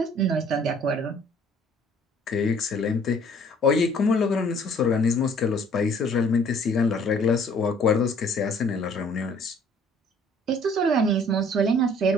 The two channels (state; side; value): normal; both; correlation 0.57